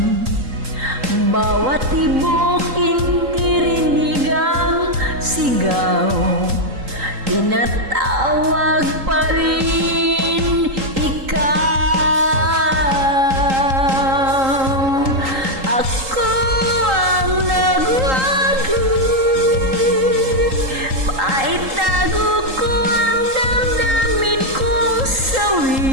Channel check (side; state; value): left; late; 3.8 ms